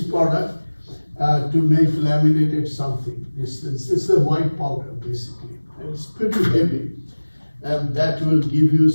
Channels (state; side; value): inverted; both; correlation -1.00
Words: product, to make laminated something. It's a white powder basically, and it's pretty heavy, and that will give you